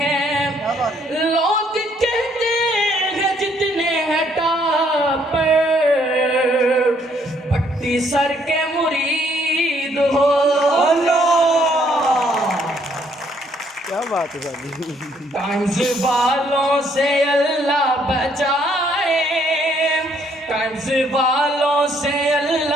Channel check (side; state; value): both; normal; correlation 0.67